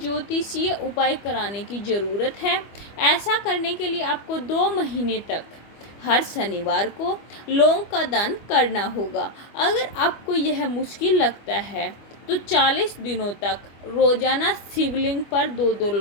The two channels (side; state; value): right; late; 25 ms